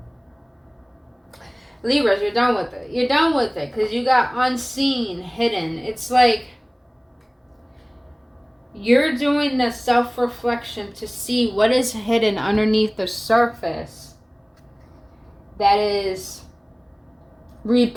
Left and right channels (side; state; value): both; identical; correlation 1.00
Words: Libras, you're done with it. You're done with it because you got unseen, hidden. It's like You're doing the self-reflection to see what is hidden underneath the surface that is